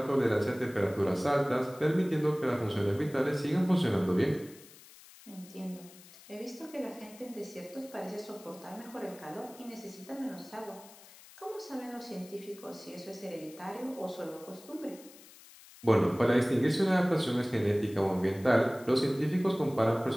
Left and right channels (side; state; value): left; noise; hiss, 21 dB below the sound